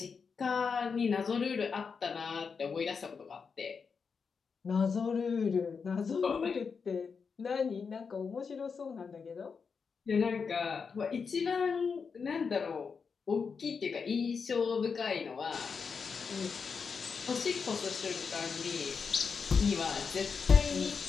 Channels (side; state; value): right; quieter; 5.6 dB